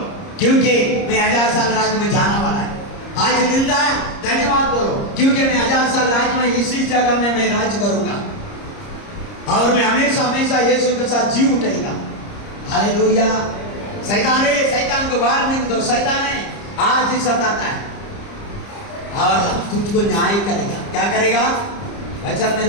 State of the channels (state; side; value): late; right; 30 ms